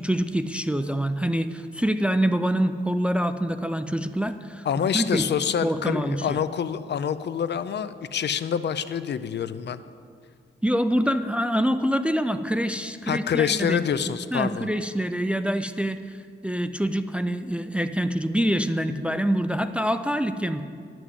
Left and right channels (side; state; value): both; normal; correlation 0.73